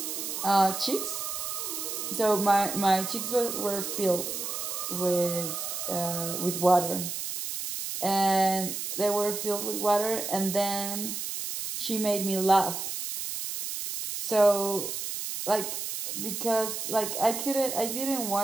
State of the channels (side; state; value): right; noise; hiss, 4 dB below the sound